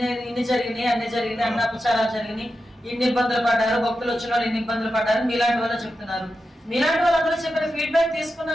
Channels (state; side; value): normal; both; correlation 0.90